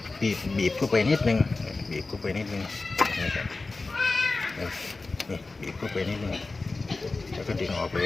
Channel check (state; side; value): quieter; right; 3.6 dB